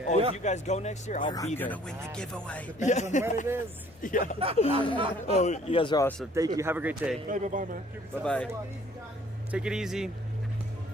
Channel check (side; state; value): both; normal; correlation 0.58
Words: Oh, if you guys go next year, I'll be there. I'm gonna win the giveaway. Depends on when it is. Yeah. Oh, you guys are awesome. Thank you. Have a great day. Bye-bye, man. Bye-bye. Take it easy.